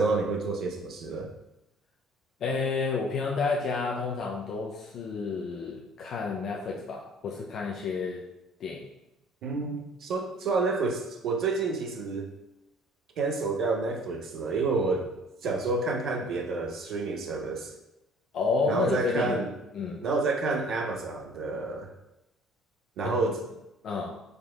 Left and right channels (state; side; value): normal; both; correlation 0.51